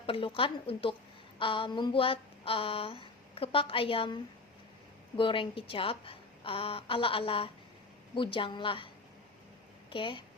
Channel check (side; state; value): right; quieter; 3.6 dB